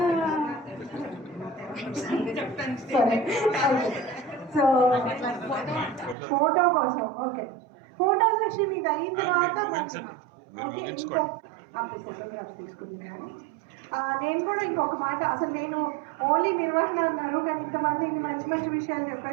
సో ఫోటో కోసం ఓకే, ఫోటో సెషన్ ఇది అయిన తర్వాత ఫోటోగ్రాఫ్స్ తీసుకుంటున్నాను. నేను కూడా ఇంకొక మాట, అసలు నేను ఓన్లీ నిర్వహణ అన్నారు కానీ ఇంతమంది ఇన్ని మంచి మంచి విషయాలు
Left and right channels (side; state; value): left; drops out; at 6.2 s